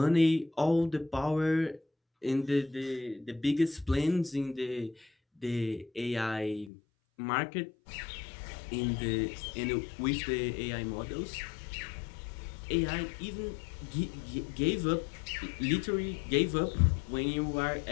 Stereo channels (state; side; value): drops out; right; at 6.7 s